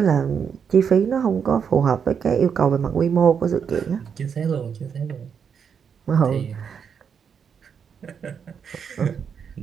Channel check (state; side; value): quieter; left; 7.0 dB